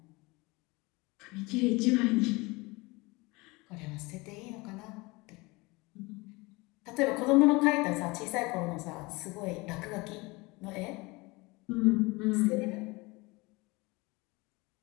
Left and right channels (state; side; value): quieter; right; 24.3 dB